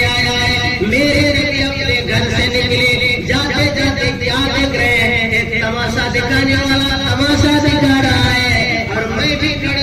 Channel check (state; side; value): identical; both; correlation 1.00